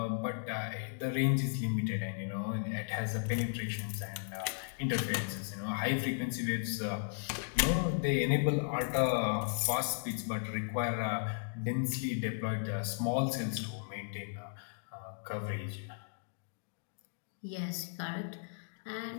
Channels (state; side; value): silent; right; digital silence